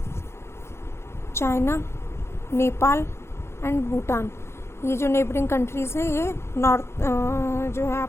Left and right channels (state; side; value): late; right; 0.13 ms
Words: China, Nepal and Bhutan, ये जो neighbouring countries हैं ये north जो है